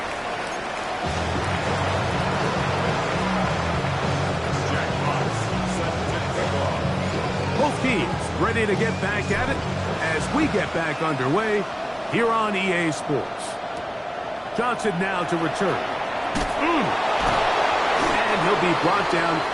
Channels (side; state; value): both; identical; correlation 1.00